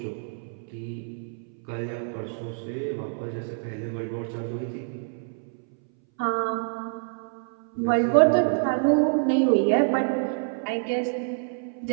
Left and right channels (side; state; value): left; silent; 60 dB below the other